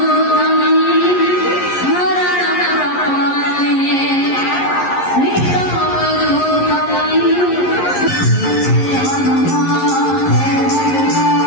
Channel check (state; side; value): late; right; 11 ms